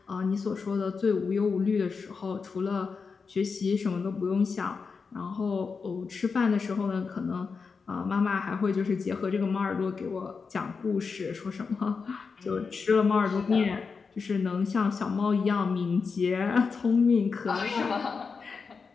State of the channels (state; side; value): quieter; right; 5.1 dB